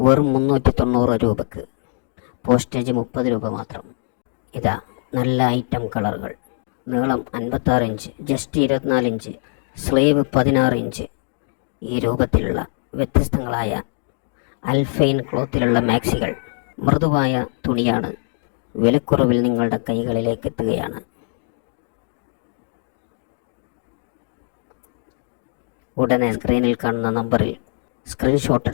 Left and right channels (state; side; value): silent; right; digital silence